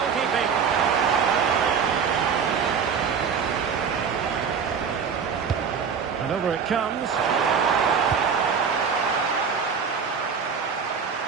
And over it comes.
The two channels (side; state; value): left; quieter; 6.4 dB